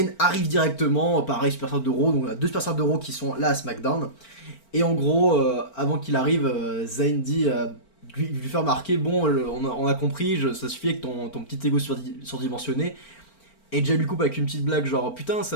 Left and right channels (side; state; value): right; late; 4.4 ms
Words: arrive directement, pareil, superstar de Raw, donc on a deux superstars de Raw qui sont là à SmackDown. Et en gros, avant qu'il arrive, Zayn dit, lui fait remarquer, bon, on a compris, ça suffit avec ton petit ego surdimensionné. Et Jay lui coupe avec une petite blague genre putain